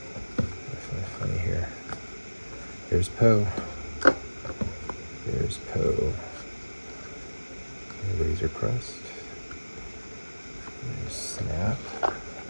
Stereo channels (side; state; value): both; inverted; correlation -1.00